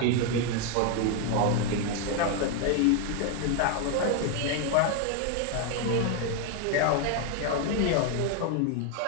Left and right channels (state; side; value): different; both; correlation 0.01